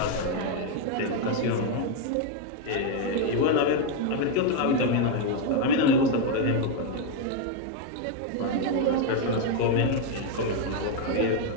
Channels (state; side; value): different; both; correlation 0.01